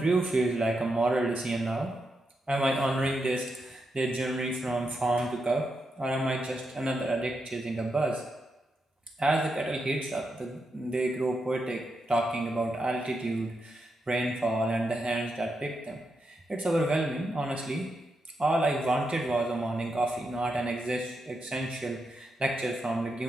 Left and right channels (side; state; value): both; normal; correlation 0.84